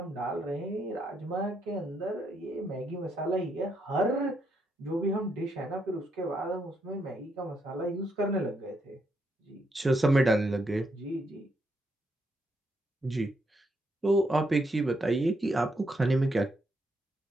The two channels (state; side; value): normal; both; correlation 0.77